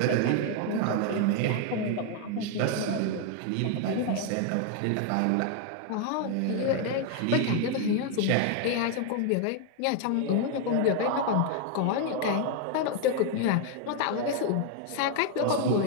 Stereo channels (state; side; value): different; both; correlation 0.00